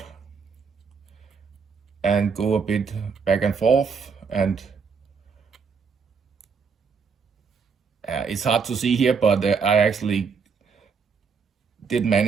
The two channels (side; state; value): left; quieter; 5.7 dB